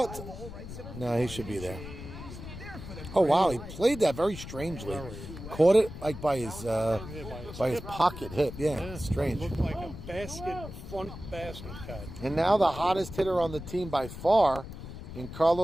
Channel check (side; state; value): left; noise; rumble, 11 dB below the sound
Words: No, he should be there. Oh wow, he played that very strangely. Caught it like by his pocket hip. Yeah, strange. Looked like a front basket cat. And now the hottest hitter on the team by far, in